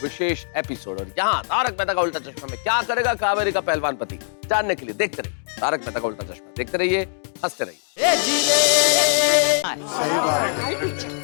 विशेष एपिसोड। और यहाँ तारक मेहता का उल्टा चश्मा में क्या करेगा कावेरी का पहलवान पति, जानने के लिए देखते रहिए तारक मेहता का उल्टा चश्मा। देखते रहिए, हंसते रहिए।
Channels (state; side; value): silent; right; digital silence